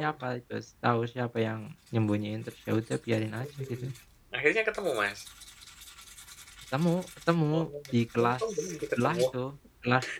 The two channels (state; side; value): identical; both; correlation 1.00